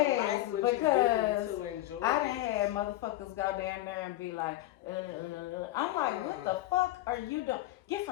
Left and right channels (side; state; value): right; quieter; 15.9 dB